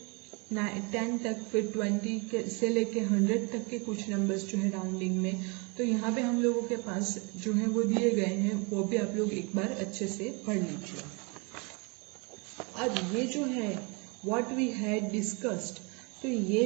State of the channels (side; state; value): left; quieter; 30.8 dB